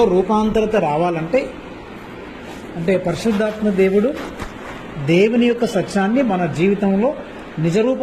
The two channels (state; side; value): identical; both; correlation 1.00